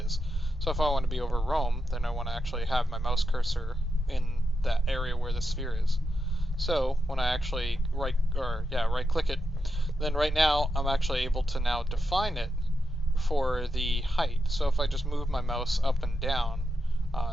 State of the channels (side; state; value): both; normal; correlation 0.86